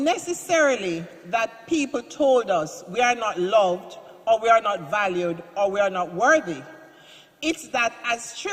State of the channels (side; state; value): both; identical; correlation 1.00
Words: that people told us we are not loved or we are not valued or we are not worthy. It's that as